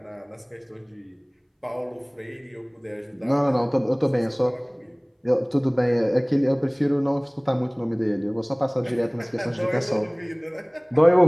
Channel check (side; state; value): both; identical; correlation 1.00